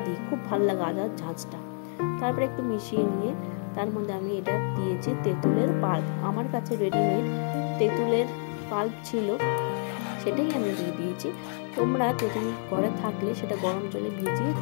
দিই, খুব ভালো লাগে আদার ঝাঁঝটা। তারপরে একটু মিশিয়ে নিয়ে তার মধ্যে আমি এটা দিয়েছি তেঁতুলের পাল্প। আমার কাছে রেডিমেড তেঁতুলের পাল্প ছিল, সেটাই আমি দিয়ে দিয়েছি। তোমরা তেঁতুল ঘরে থাকলে সেটা গরম জলে ভিজিয়ে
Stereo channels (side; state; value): right; silent; 59 dB below the other